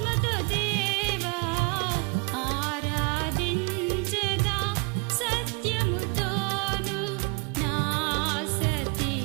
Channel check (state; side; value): quieter; left; 31.1 dB